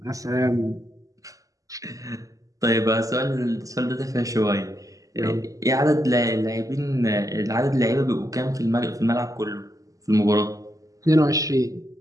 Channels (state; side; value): late; left; 0.16 ms